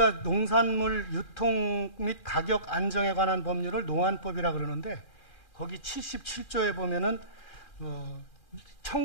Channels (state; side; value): late; right; 2.4 ms